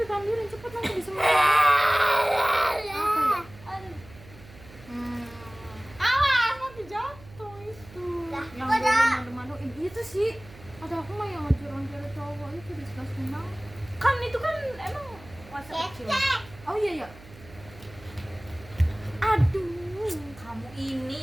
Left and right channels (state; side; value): noise; right; hum, 20 dB below the sound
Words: ambilin cepet nanti disemutin. Apa ya? Aduh. Hmm, Awas, nanti jatuh itu. Lah, yang kok dah? malu-maluin itu sih. Ada aku mah yang ngajar-ngajar cowok itu disgusting banget. Kan itu kan emang masa kecil. Cek. Oh iya. Aduh, Kamu ini